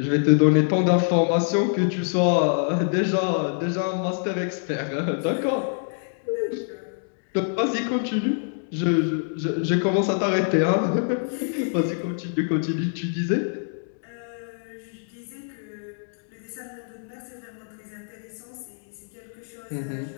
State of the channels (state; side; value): silent; right; digital silence